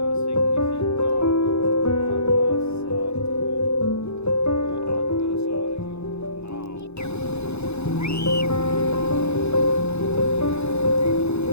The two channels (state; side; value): late; right; 0.80 ms